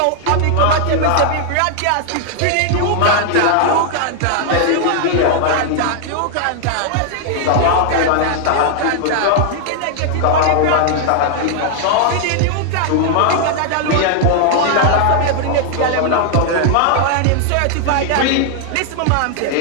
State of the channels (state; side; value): different; both; correlation 0.00